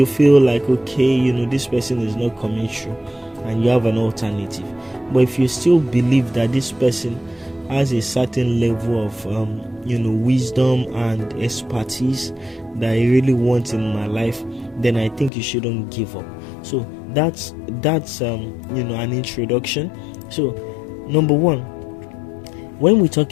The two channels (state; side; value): drops out; right; at 15.3 s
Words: feel like, okay, this person is not coming through and you have an alternative. But if you still believe that this person has a certain level of wisdom and expertise that I really want in my life, then I think you shouldn't give up. So that's an introduction. So number one, when we